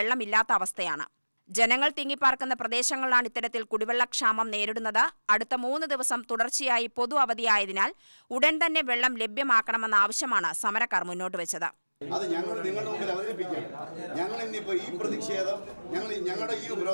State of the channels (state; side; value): inverted; both; correlation -1.00